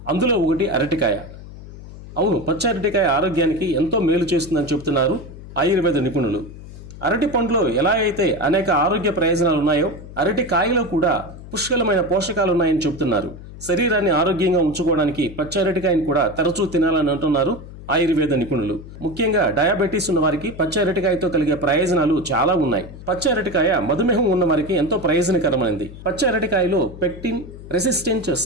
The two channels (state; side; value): noise; left; hum, 15 dB below the sound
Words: అందులో ఒకటి అరటికాయ. అవును, పచ్చి అరటికాయ ఆరోగ్యానికి ఎంతో మేలు చేస్తుందని చెబుతున్నారు ఆయుర్వేద నిపుణులు. అరటి పండులో ఎలా అయితే అనేక ఆరోగ్య ప్రయోజనాలు ఉన్నాయో అరటి కాయలో కూడా పుష్కలమైన పోషకాలు ఉన్నాయని చెబుతున్నారు. శరీరాన్ని ఆరోగ్యంగా ఉంచుకోవడానికి పచ్చి అరటికాయని కూడా తరచూ తినాలని అంటున్నారు ఆయుర్వేద నిపుణులు. ముఖ్యంగా డయాబెటీస్ ఉన్న వారికి పచ్చి అరటికాయతో కలిగే ప్రయోజనాలు చాలా ఉన్నాయి. పచ్చి అరటికాయ మధుమేహం ఉన్న వారికి ఎంతో ప్రయోజనకరమైనది. పచ్చి అరటికాయలో పెక్టిన్ రెసిస్టెంట్